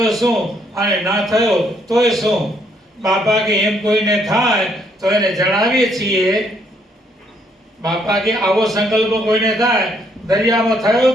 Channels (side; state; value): both; normal; correlation 0.70